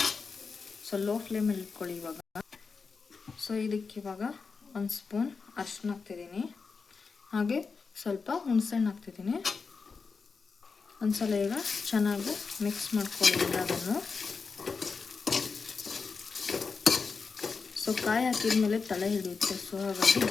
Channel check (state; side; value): quieter; right; 4.9 dB